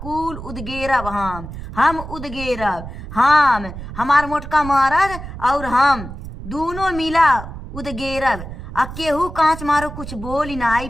कुल उदगेरब। हम उदगेरब। हम हमार मोटका मरद और हम दोनों मिला उदगेरब। आ केहू कांच मारो कुछ बोली ना आई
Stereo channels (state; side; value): noise; right; rumble, 11 dB below the sound